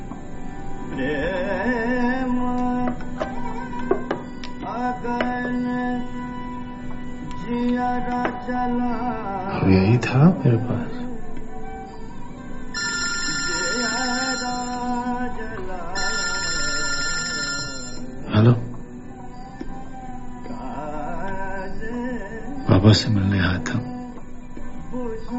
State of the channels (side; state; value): both; identical; correlation 1.00